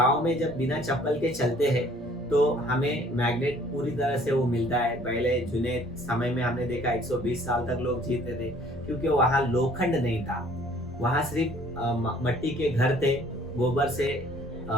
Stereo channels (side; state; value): both; normal; correlation 0.56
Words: में जब बिना चप्पल के चलते हैं तो हमें मैग्नेट पूरी तरह से वो मिलता है। पहले जुने समय में हमने देखा 120 साल तक लोग जीते थे, क्योंकि वहाँ लोखंड नहीं था, वहाँ सिर्फ मट्टी के घर थे, गोबर से